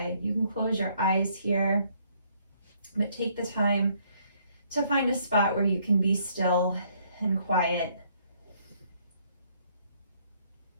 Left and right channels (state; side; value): inverted; both; correlation -0.66